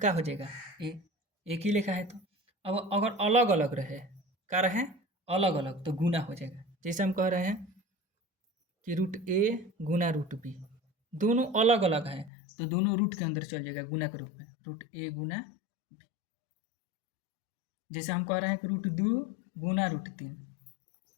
हो जाएगा ए, एक ही लेखा है तो। अब अगर अलग अलग रहे, क्या रहे? अलग अलग, तो गुना हो जाएगा। जैसे हम कह रहे हैं कि रूट ए गुना रूट बी, दोनों अलग अलग हैं तो दोनों रूट के अंदर चल जाएगा गुना के रूप में, रूट ए गुना बी। जैसे हम कह रहे हैं कि रूट 2 गुना रूट 3,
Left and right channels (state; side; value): drops out; right; at 12.3 s